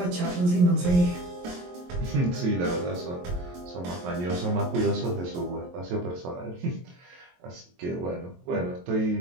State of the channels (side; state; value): left; late; 23 ms